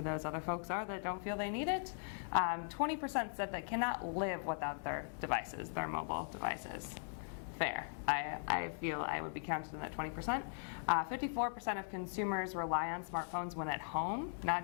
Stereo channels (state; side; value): silent; right; digital silence